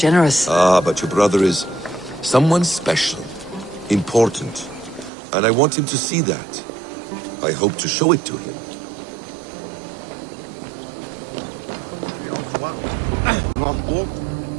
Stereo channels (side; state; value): left; drops out; at 5.1 s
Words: Ah, but your brother is someone special, important, and I want him to see that. I hope to show it to him.